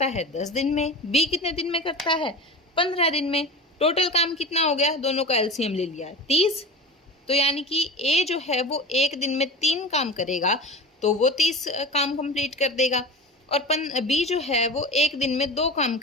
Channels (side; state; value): both; normal; correlation 0.30